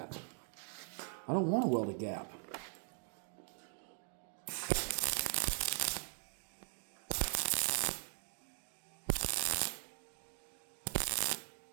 I don't want to weld a gap.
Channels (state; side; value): silent; left; 51 dB below the other